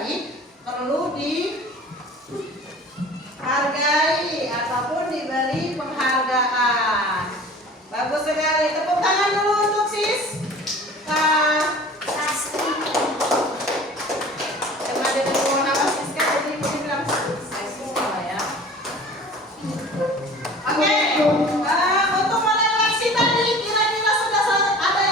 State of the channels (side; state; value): both; normal; correlation 0.43